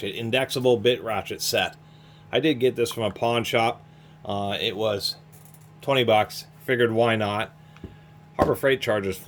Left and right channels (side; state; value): both; identical; correlation 1.00